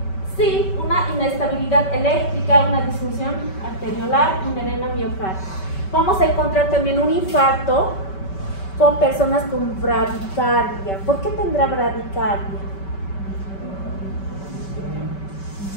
Sí, una inestabilidad eléctrica, una disfunción arteriolar, un edema miocardio. Vamos a encontrar también un infarto con personas con bradicardia. ¿Por qué tendrá bradicardia?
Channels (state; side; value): late; right; 5.2 ms